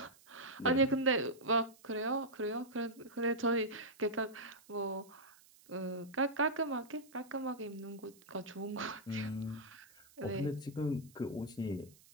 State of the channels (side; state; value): right; noise; hiss, 26 dB below the sound